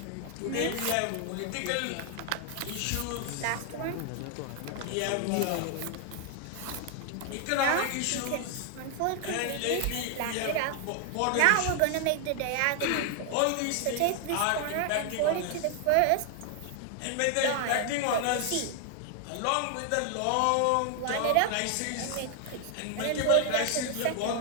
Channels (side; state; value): both; different; correlation 0.00